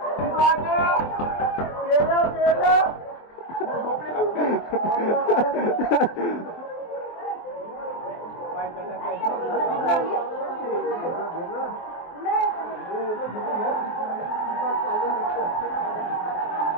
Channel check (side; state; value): right; late; 23 ms